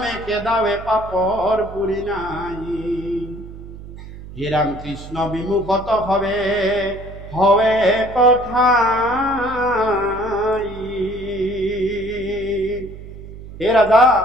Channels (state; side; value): noise; right; hum, 14 dB below the sound